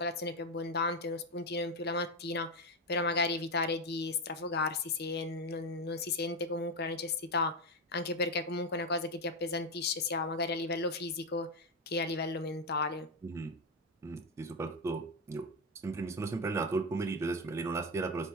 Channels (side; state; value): both; normal; correlation 0.10